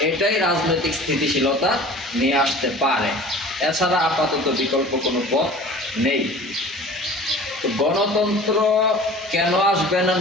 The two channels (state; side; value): normal; both; correlation 0.43